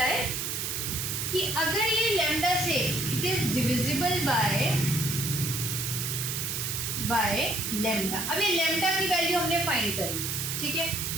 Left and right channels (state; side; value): noise; right; hiss, 2 dB below the sound